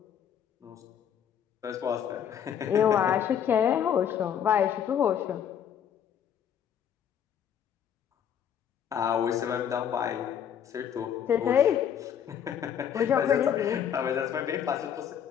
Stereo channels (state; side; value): quieter; right; 8.8 dB